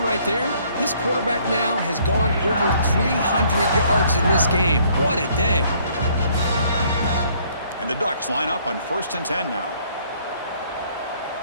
right there, this quarterback now has gone over 300 yards in this game. What a day. And the Ducks line up on 1st and 10 now.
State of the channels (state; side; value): inverted; both; correlation -0.63